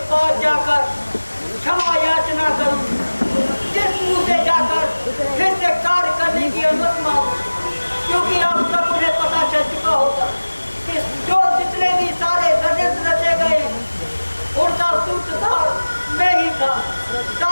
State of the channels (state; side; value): inverted; both; correlation -1.00